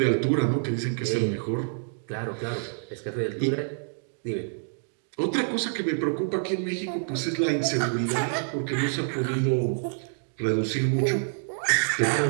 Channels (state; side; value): silent; left; digital silence